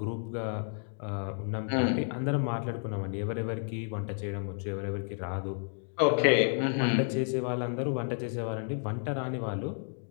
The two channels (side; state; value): right; silent; 57 dB below the other